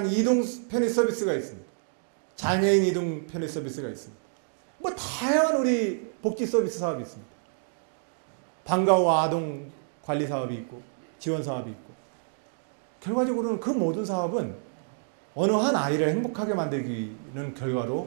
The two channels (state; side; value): silent; left; digital silence